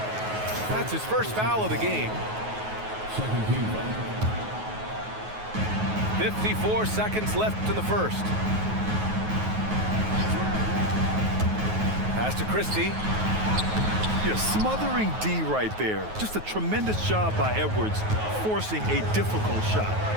That's his first foul of the game. 54 seconds left in the first. Pass to Christie. You're smothering D right there. Just a tremendous job by Edwards, forcing a difficult shot.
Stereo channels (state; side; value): late; left; 9.4 ms